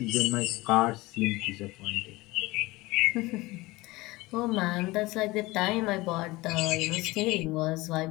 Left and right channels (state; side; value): quieter; right; 20.8 dB